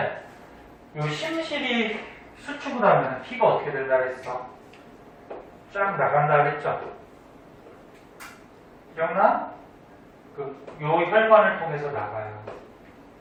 이 심실이 수축을 하면 피가 어떻게 된다 그랬어? 쫙 나간다 그랬죠? 기억나? 요 혈관을 통해서 나가요.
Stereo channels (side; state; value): both; identical; correlation 1.00